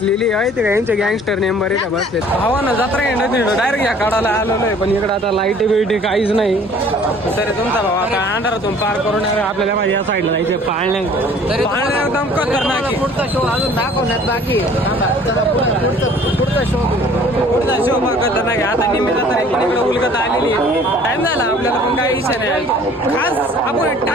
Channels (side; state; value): both; normal; correlation 0.52